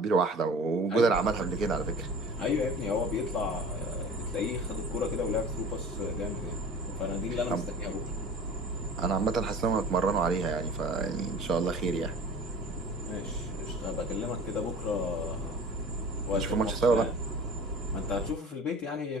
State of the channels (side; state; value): both; normal; correlation 0.41